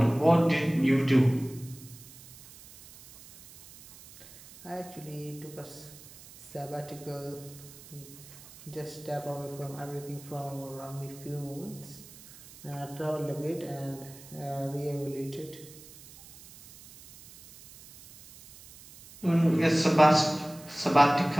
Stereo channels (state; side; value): noise; right; hiss, 20 dB below the sound